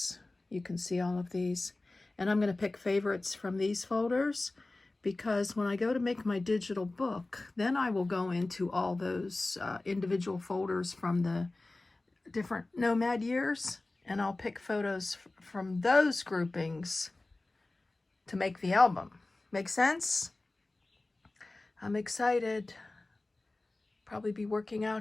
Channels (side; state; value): right; quieter; 3.0 dB